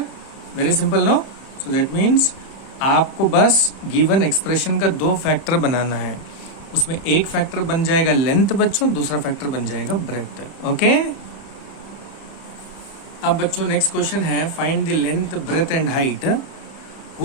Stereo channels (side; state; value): right; late; 31 ms